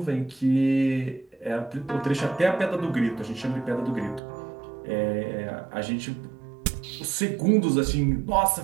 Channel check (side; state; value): left; drops out; at 4.2 s